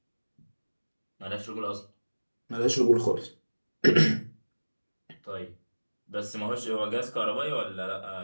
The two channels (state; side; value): inverted; both; correlation -1.00